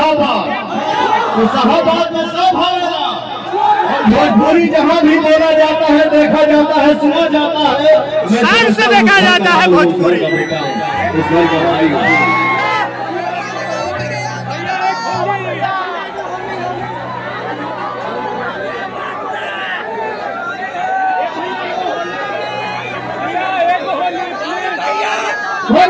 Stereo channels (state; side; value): identical; both; correlation 1.00